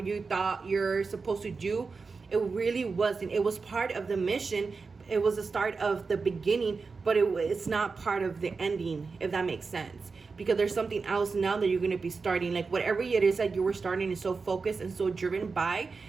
thought you're supposed to do, it really wasn't. It was part of the mission. It was the start of the beginning, but it's not part of the ending, if that makes sense. because there's something else now that you're going to be starting. Like whatever it is that you were starting is so focused and so driven by,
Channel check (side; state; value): left; quieter; 4.6 dB